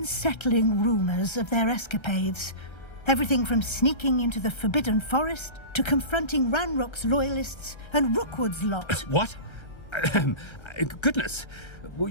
rumours of their escapades. Everything from sneaking into the Forbidden Forest to confronting Ranrock's loyalists and Rookwood's lot. What? Goodness.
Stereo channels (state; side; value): late; right; 1.3 ms